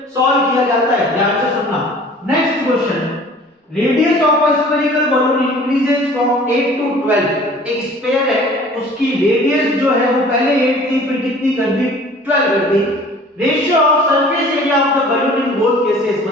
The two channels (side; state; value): both; normal; correlation 0.48